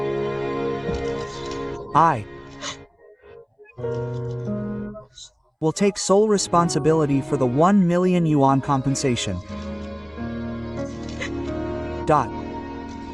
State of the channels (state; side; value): identical; both; correlation 1.00